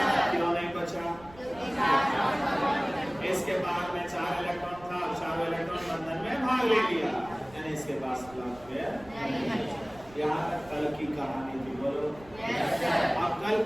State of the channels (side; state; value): right; noise; rumble, 22 dB below the sound